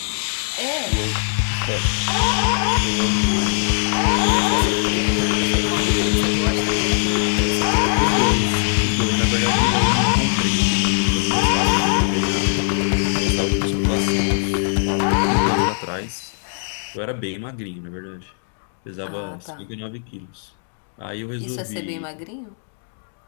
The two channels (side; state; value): right; silent; digital silence